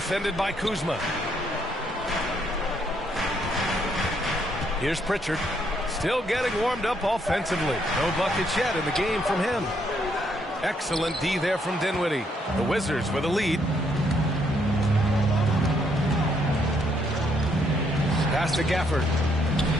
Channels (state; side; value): normal; both; correlation 0.72